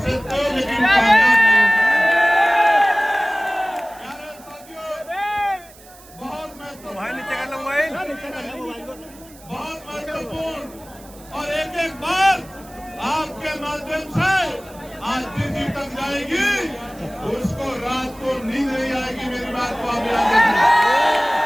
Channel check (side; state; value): right; noise; hiss, 23 dB below the sound